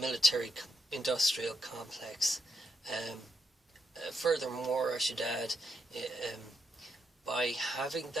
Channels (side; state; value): both; normal; correlation 0.80